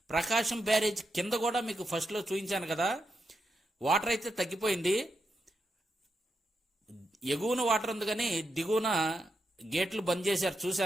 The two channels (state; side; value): normal; both; correlation 0.84